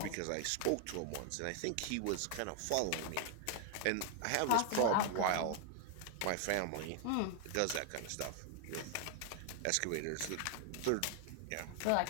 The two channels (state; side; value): different; both; correlation 0.00